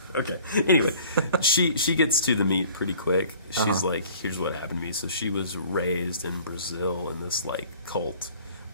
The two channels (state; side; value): inverted; both; correlation -0.51